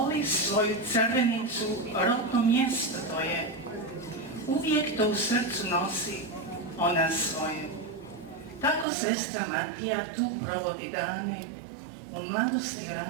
svoju crvenicu, rodno mjesto to je. Uvijek to u srcu nosi ona svoje. Tako sestra Matija tu provodi dane, u mladosti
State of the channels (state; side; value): drops out; left; at 8.8 s